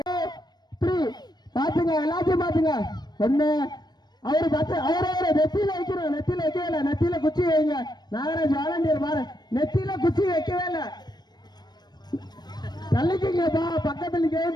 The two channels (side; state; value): right; late; 0.20 ms